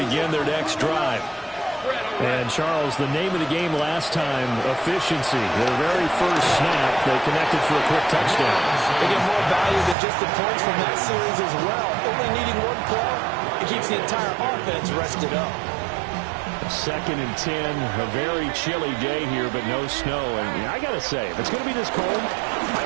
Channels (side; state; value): left; drops out; at 10.0 s